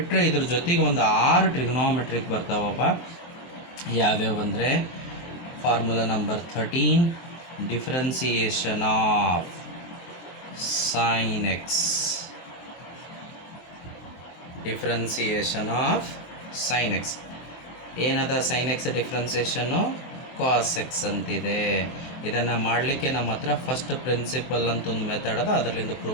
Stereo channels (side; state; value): right; late; 23 ms